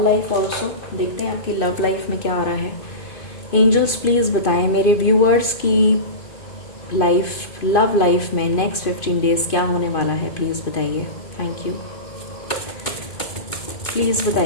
life also. देखते हैं आपकी लव लाइफ में क्या आ रहा है. एंजल्स प्लीज़ बताएं मेरे व्यूअर्स की लाइफ, लव लाइफ में नेक्स्ट 15 डेज़ क्या होने वाला है, प्लीज़ बताइए. Thank you. प्लीज़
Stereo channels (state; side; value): late; right; 2.5 ms